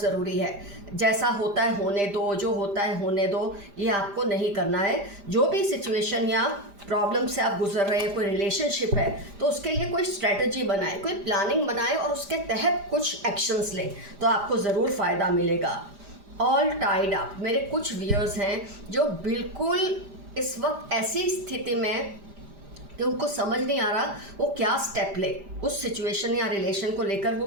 ज़रूरी है। जैसा होता है होने दो, जो होता है होने दो, ये आपको नहीं करना है। जो भी सिचुएशन या प्रॉब्लम से आप गुजर रहे हैं, कोई रिलेशनशिप है तो उसके लिए कोई स्ट्रेटजी बनाए, कोई प्लानिंग बनाए और उसके तहत कुछ एक्शंस लें तो आपको ज़रूर फ़ायदा मिलेगा। ऑल टाइड अप, मेरे कुछ व्यूअर्स हैं जो बिल्कुल इस वक्त ऐसी स्थिति में कि उनको समझ नहीं आ रहा वो क्या स्टेप ले, उस सिचुएशन या रिलेशन को लेकर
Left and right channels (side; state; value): left; late; 5.0 ms